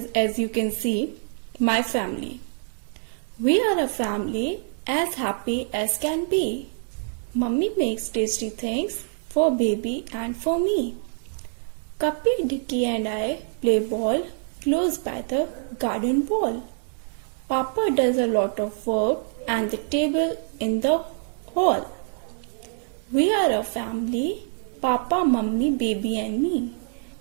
as you can see, My Family. We are a family as happy as can be. Mummy makes tasty things for baby and for me. Cuppy, Dicky and I play ball close by the garden wall. Papa does a lot of work and the table in the hall. We are a family, Papa, Mummy, baby and me.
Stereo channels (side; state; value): left; silent; 61 dB below the other